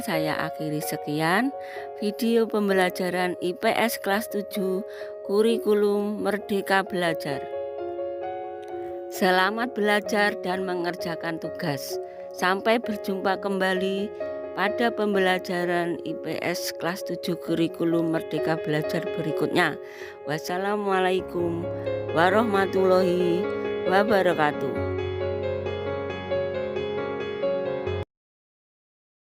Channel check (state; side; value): identical; both; correlation 1.00